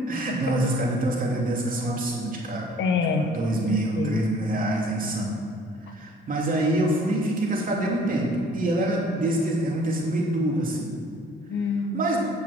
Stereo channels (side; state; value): both; normal; correlation 0.55